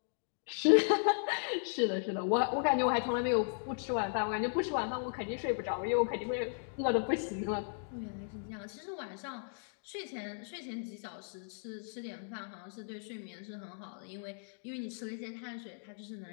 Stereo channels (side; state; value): right; silent; digital silence